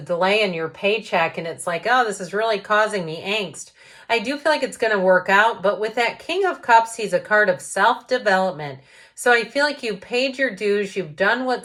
in your paycheck and it's like, oh, this is really causing me angst. I do feel like it's going to work out, but with that King of Cups, he's a card of self-development. So I feel like you've paid your dues, you've done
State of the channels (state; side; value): identical; both; correlation 1.00